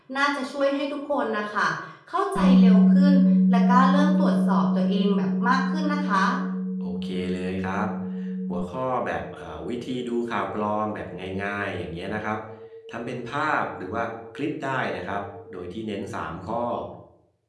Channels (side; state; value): both; identical; correlation 1.00